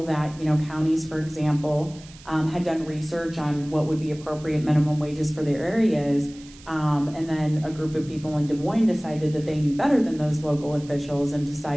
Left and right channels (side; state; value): right; noise; hiss, 22 dB below the sound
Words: that counties, for example, had done research on what would be appropriate minimum wages for their areas, and then a group of people in Des Moines decided that they knew better than those local officials and